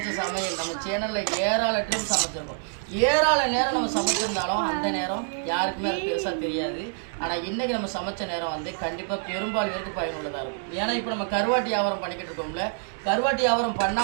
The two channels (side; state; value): left; silent; digital silence